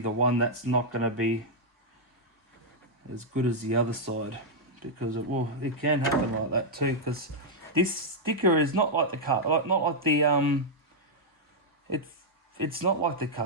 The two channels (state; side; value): normal; both; correlation -0.04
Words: one that's not going to be as good as the other side, because it can happen like that too, because this sticker is not like the it's not like the